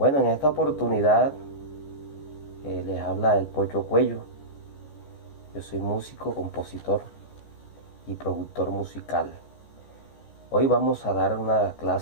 en esta oportunidad les habla el Pocho Cuello. Yo soy músico, compositor y productor musical. Hoy vamos a dar una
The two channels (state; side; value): late; right; 14 ms